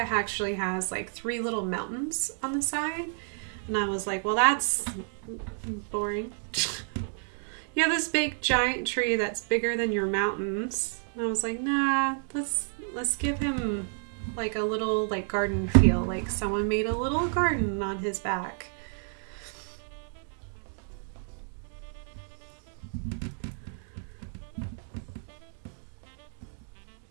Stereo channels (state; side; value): silent; left; 58 dB below the other